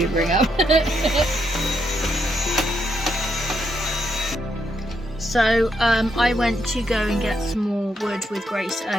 up. So, I went to go and get some more wood with Grace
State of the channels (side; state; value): both; normal; correlation 0.78